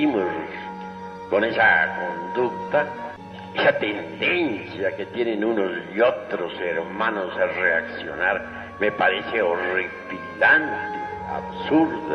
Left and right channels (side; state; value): both; identical; correlation 1.00